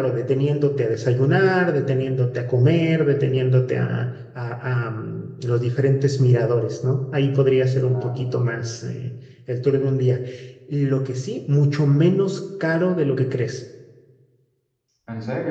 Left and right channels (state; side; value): identical; both; correlation 1.00